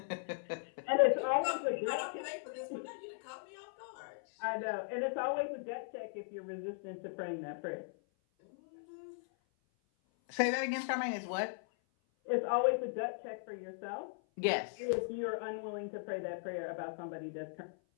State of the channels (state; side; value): silent; right; 52 dB below the other